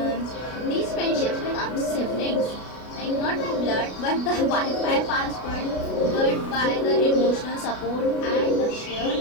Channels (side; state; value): right; late; 33 ms